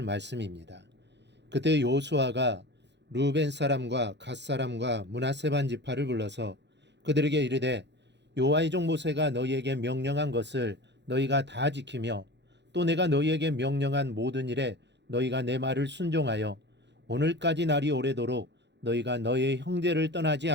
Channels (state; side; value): late; left; 0.51 ms